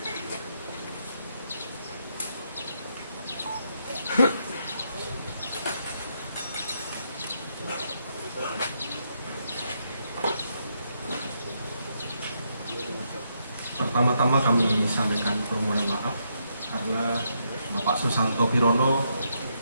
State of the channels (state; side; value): inverted; both; correlation -0.78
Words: Pertama-tama kami sampaikan permohonan maaf karena Bapak Susanto Pirono